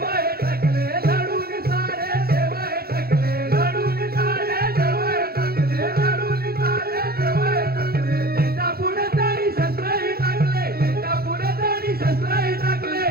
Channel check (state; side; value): late; left; 0.45 ms